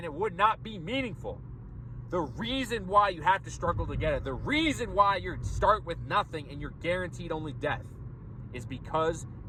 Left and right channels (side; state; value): both; identical; correlation 1.00